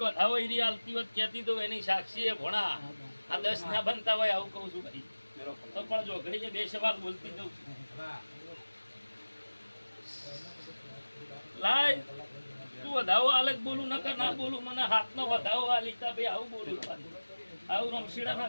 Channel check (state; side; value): inverted; both; correlation -1.00